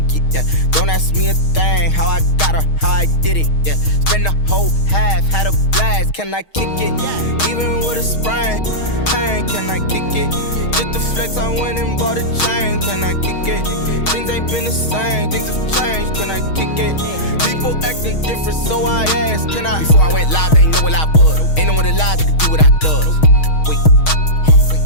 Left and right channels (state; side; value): late; right; 6.4 ms